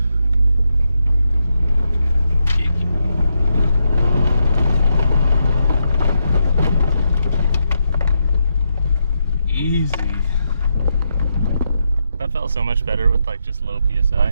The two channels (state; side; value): inverted; both; correlation -0.82